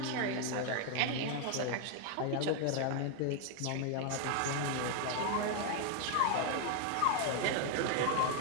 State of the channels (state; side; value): different; both; correlation 0.00